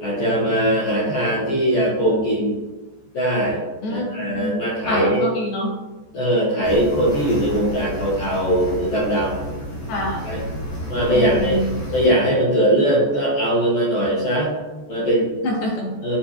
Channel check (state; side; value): late; right; 14 ms